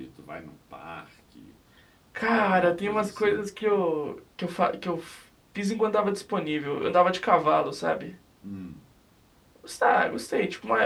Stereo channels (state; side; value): identical; both; correlation 1.00